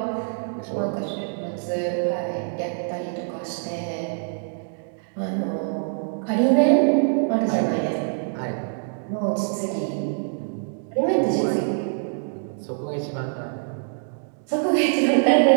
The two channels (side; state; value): left; silent; digital silence